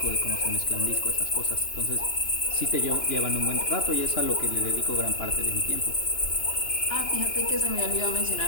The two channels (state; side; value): late; right; 2.9 ms